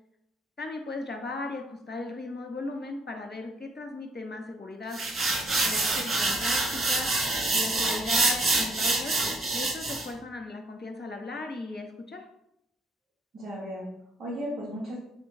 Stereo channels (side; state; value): both; normal; correlation 0.66